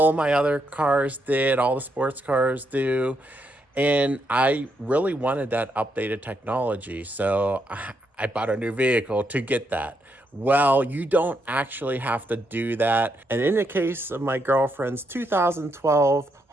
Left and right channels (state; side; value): normal; both; correlation 0.79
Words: of my other cars did, all the sports cars do. And I really wanted that updated technology. So I bought a new vehicle to get that. Well, you don't actually have to do that. And in the case of my girlfriend's 2012